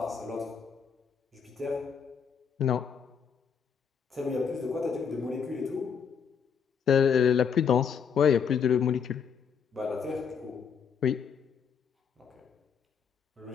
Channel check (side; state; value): right; quieter; 6.8 dB